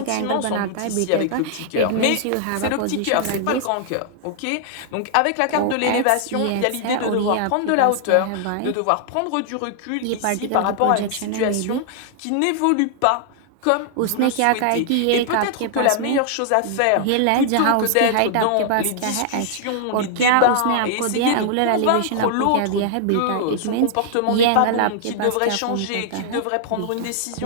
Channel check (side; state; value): both; different; correlation -0.01